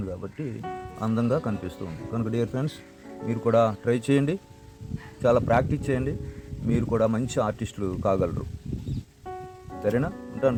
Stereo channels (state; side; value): identical; both; correlation 1.00